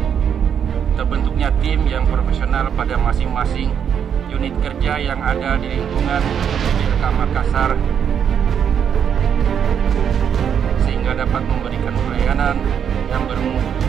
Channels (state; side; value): quieter; left; 8.1 dB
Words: terbentuknya tim yang profesional pada masing-masing unit kerja yang ada di lingkungan PBLK Makassar, sehingga dapat memberikan pelayanan yang bermutu